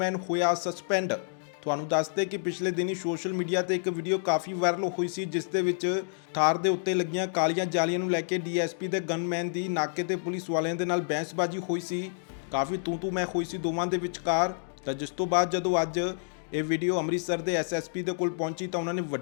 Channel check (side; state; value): right; silent; digital silence